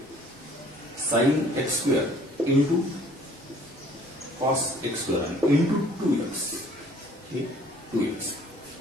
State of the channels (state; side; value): normal; both; correlation 0.55